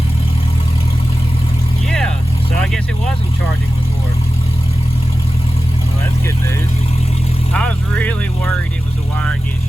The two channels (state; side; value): normal; both; correlation 0.95